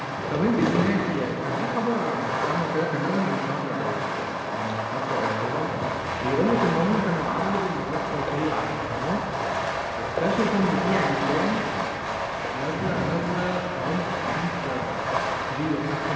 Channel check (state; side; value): identical; both; correlation 1.00